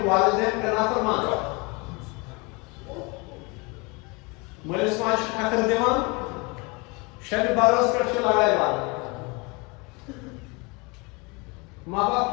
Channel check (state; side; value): quieter; right; 27.5 dB